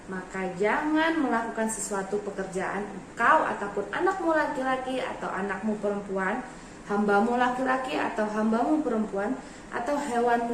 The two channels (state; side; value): identical; both; correlation 1.00